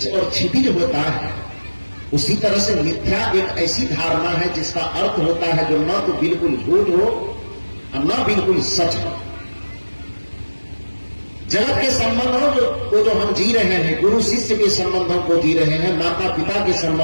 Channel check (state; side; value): inverted; both; correlation -1.00